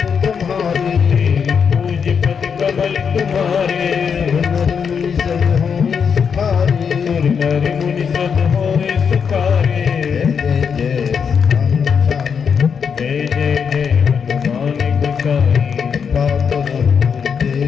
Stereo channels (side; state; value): right; quieter; 6.6 dB